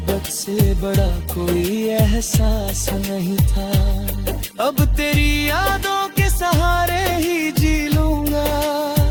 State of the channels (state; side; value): identical; both; correlation 1.00